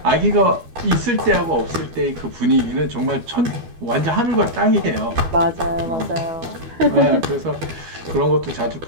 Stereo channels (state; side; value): late; left; 12 ms